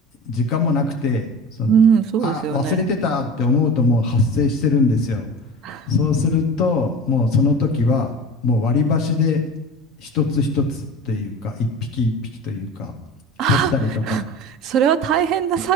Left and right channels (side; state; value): both; normal; correlation 0.34